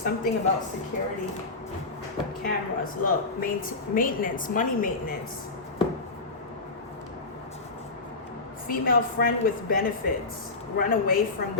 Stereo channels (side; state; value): right; quieter; 3.5 dB